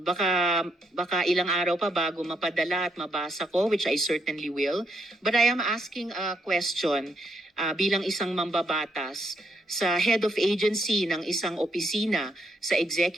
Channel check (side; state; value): both; normal; correlation 0.77